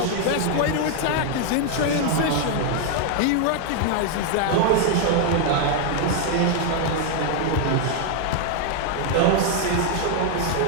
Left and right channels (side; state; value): both; different; correlation 0.00